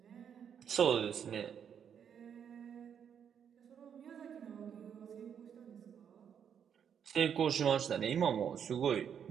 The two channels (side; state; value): left; quieter; 8.1 dB